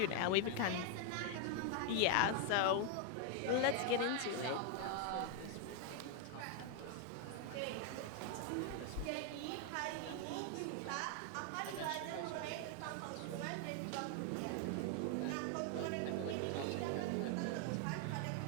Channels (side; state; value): both; different; correlation 0.00